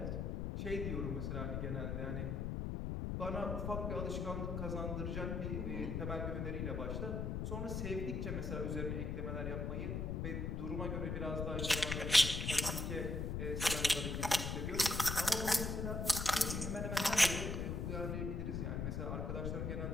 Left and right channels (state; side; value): noise; left; rumble, 1 dB below the sound